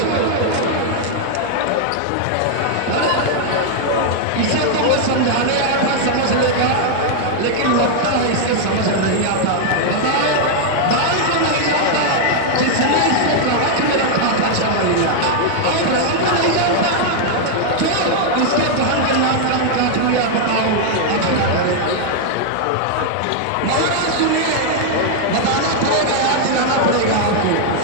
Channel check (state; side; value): different; both; correlation 0.00